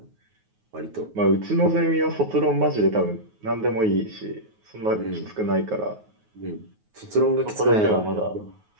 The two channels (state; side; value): late; left; 9.4 ms